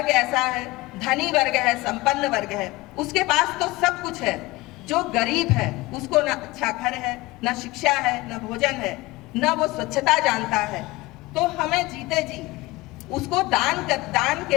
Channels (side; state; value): right; quieter; 20.8 dB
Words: ऐसा है, धनी वर्ग है, संपन्न वर्ग है, उसके पास तो सब कुछ है। जो गरीब है उसको न अच्छा घर है, न शिक्षा है, न भोजन है, न वो स्वच्छता जानता है। तो हमें जीते जी उसको दान